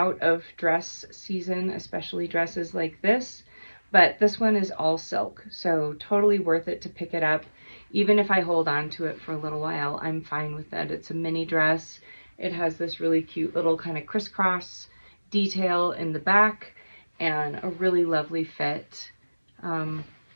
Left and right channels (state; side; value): inverted; both; correlation -1.00